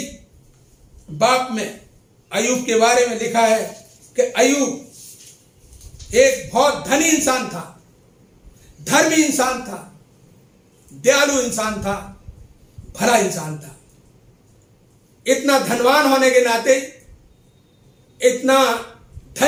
बाप में अय्यूब के बारे में लिखा है कि अय्यूब एक बहुत धनी इंसान था, धर्मी इंसान था, दयालु इंसान था, भला इंसान था। इतना धनवान होने के नाते, इतना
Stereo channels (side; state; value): both; identical; correlation 1.00